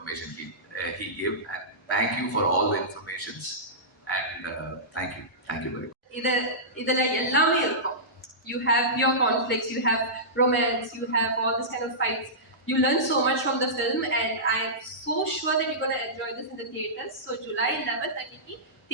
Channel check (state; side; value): normal; both; correlation -0.17